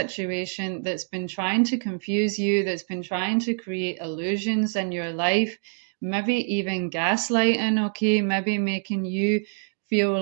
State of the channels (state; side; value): silent; left; digital silence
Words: that's been trying to confuse you, that's been trying to create illusions in your life, maybe even gaslighting, okay, maybe making you feel